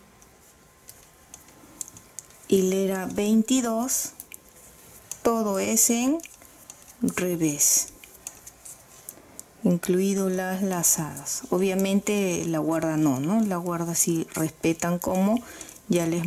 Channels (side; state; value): both; identical; correlation 1.00